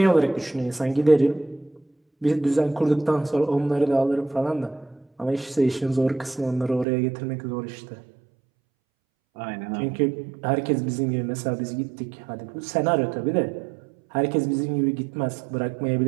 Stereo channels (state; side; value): drops out; left; at 6.9 s